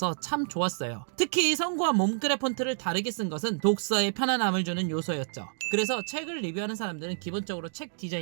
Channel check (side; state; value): left; silent; digital silence